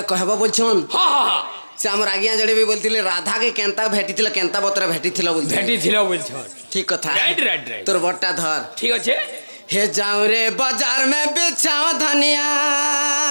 কহবা বলছন হা হা হা সে আমার আজ্ঞা জড়ে বি বলতিলে রাধাকে কেনতা ভেটিছিল কেনতা বতরে ভেটিছিল বলতে ভেটি ছিল বলছ ঠিক কথা রাইট রাইট রাইট তোর বটটা ধর ঠিক আছে हे जाऊं रे बाजार में बेचाओ धनिया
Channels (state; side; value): inverted; both; correlation -1.00